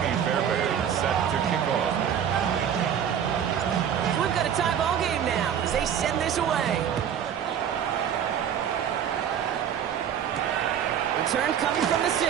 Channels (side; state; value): left; quieter; 8.9 dB